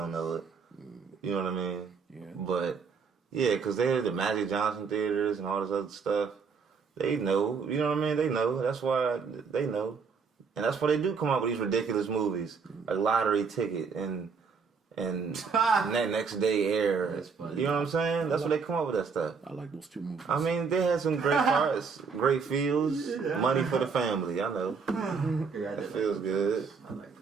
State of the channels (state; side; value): quieter; left; 5.4 dB